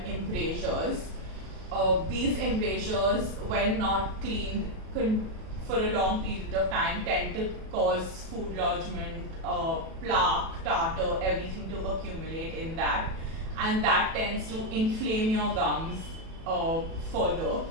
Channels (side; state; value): left; late; 37 ms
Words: embrasures. These embrasures, when not cleaned for a long period of time tend to cause food lodgement, plaque, tartar, everything to accumulate in that, and that tends to inflame your gums further.